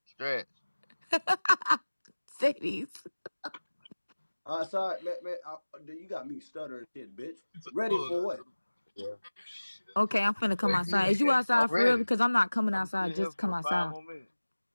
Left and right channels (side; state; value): both; inverted; correlation -1.00